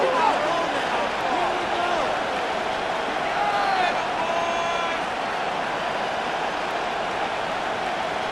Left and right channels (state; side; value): identical; both; correlation 1.00